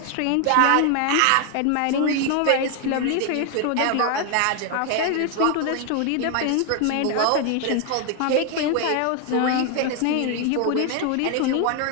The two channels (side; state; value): both; different; correlation 0.01